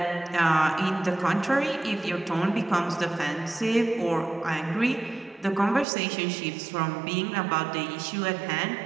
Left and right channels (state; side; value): drops out; left; at 5.9 s